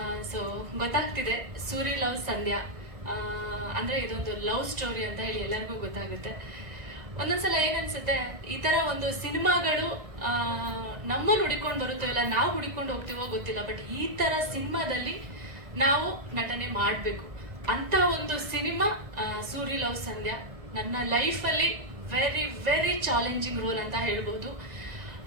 ಸೊ ಗೊತ್ತಾಗ್ತಿದೆ ಸೂರಿ ಲವ್ ಸಂಧ್ಯಾ ಅಂದರೆ ಇದೊಂದು ಲವ್ ಸ್ಟೋರಿ ಅಂತ ಹೇಳಿ ಎಲ್ಲರಿಗೂ ಗೊತ್ತಾಗುತ್ತೆ. ಒಂದೊಂದ್ಸಲ ಏನನ್ಸುತ್ತೆ, ಈ ಥರ ಒಂದು ಸಿನಿಮಾಗಳು ನಮ್ಮನ್ನು ಹುಡಿಕೊಂಡು ಬರುತ್ತೋ ಇಲ್ಲ ನಾವು ಹುಡಿಕೊಂಡು ಹೋಗ್ತೀವೋ ಗೊತ್ತಿಲ್ಲ, ಬಟ್ ಈ ಥರ ಸಿನಿಮಾದಲ್ಲಿ ನಾವು ನಟನೆ ಮಾಡಬೇಕು ಅಂತ ಒಂದು ಸಿನಿಮಾ ಸೂರಿ ಲವ್ ಸಂಧ್ಯಾ. ನನ್ನ ಲೈಫಲ್ಲಿ ವೆರಿ ವೆರಿ ಚಾಲೆಂಜಿಂಗ್ ರೋಲ್ ಅಂತ ಹೇಳ್ಬೋದು.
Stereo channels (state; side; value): late; left; 2.0 ms